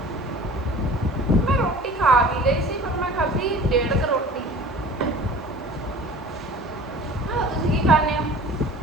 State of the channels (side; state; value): both; normal; correlation 0.43